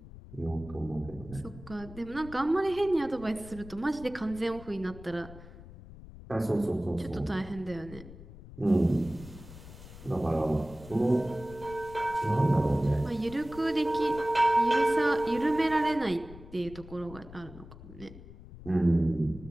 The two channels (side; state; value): left; noise; rumble, 16 dB below the sound